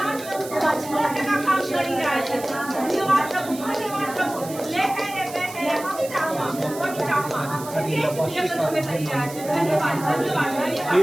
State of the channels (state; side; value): noise; right; hiss, 14 dB below the sound